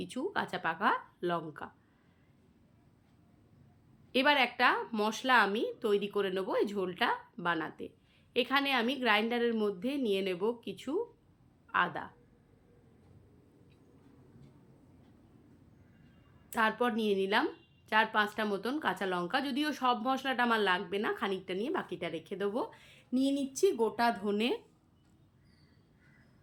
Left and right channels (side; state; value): both; identical; correlation 1.00